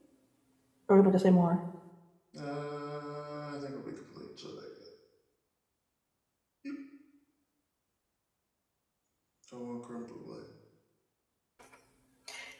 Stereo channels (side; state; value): both; identical; correlation 1.00